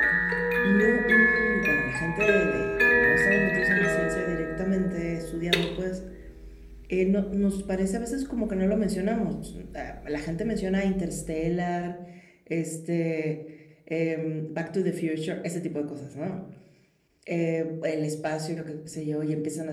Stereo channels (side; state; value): both; identical; correlation 1.00